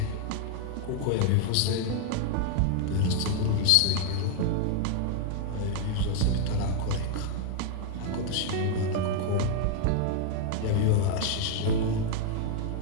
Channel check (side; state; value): both; different; correlation 0.00